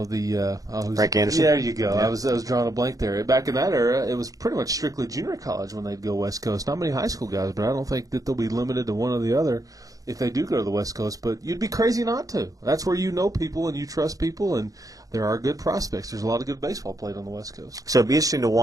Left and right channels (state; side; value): late; left; 0.17 ms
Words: Anderson. Yeah, there you go. Yeah. I was drawing a blank there. Back in that era, it was pretty much strictly junior college when they'd go West Coast. Not many high school guys, but I don't think that they'll be limited to one or the other if they do go to the West Coast. But you'd be crazy not to. That's where you know people and you trust people, and there are good prospects. There's a lot of good baseball played on the West Coast. So it'd be interesting to